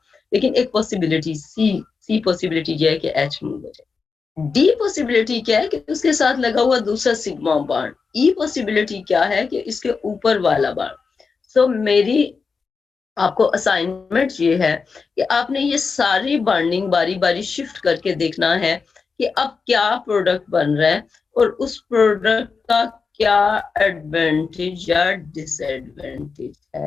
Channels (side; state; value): right; quieter; 5.0 dB